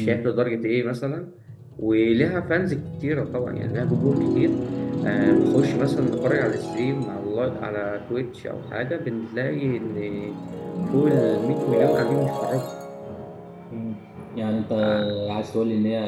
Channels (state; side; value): identical; both; correlation 1.00